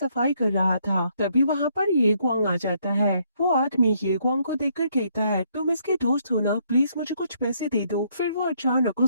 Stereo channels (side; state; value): both; inverted; correlation -0.70